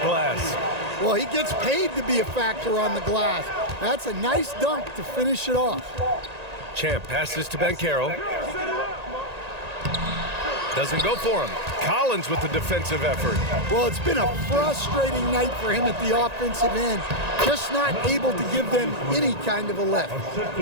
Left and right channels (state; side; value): late; left; 1.9 ms